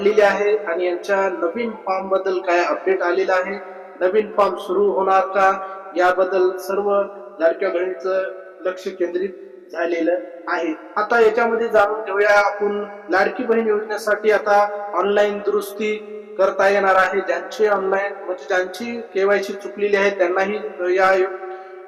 आहे आणि यांच्या नवीन फॉर्म बद्दल काय अपडेट आलेला आहे, नवीन फॉर्म सुरू होणार का, याबद्दल सर्व लाडक्या बहिणीचं लक्ष केंद्रित झालेलं आहे. आता याच्यामध्ये जाणून घेऊया आपण. लाडकी बहीण योजनेसाठी आता ऑनलाईन दुरुस्ती करता येणार आहे. ज्यांची ऑनलाईन म्हणजे ज्यांची केवायसी चुकलेली आहे त्यांनाही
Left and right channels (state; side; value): identical; both; correlation 1.00